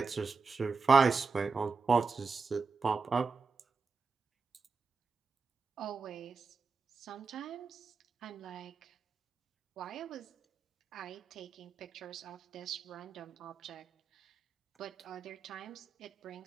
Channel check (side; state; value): left; quieter; 4.7 dB